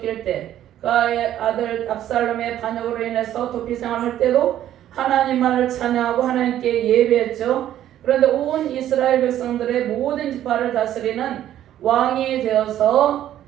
때 그의 아들 압살롬의 반역으로 인해서 도피 생활할 때도 하나님만을 찬양하고 하나님께 예배했죠. 그런데 온 이스라엘 백성들의 모든 지파를 다스리는 왕이 되어서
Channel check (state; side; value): quieter; left; 11.9 dB